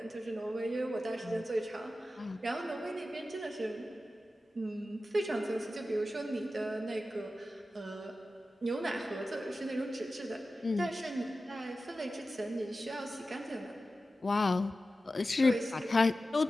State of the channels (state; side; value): normal; both; correlation 0.94